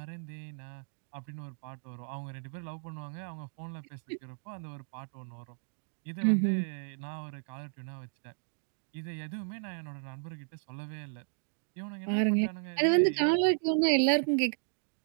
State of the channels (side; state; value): left; silent; digital silence